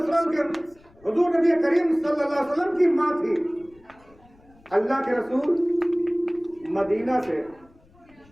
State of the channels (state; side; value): noise; left; rumble, 29 dB below the sound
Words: वसल्लम के हुजूर नबी करीम सल्लल्लाहु अलैहि वसल्लम की माँ थी। अल्लाह के रसूल